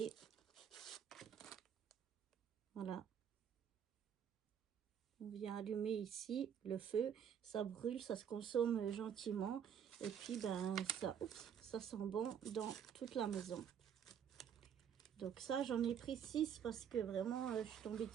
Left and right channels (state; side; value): quieter; left; 8.4 dB